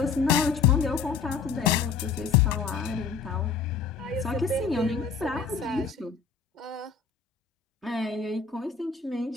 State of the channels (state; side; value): quieter; right; 5.7 dB